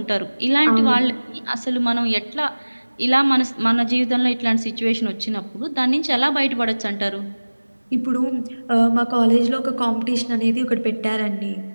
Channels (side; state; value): both; inverted; correlation -1.00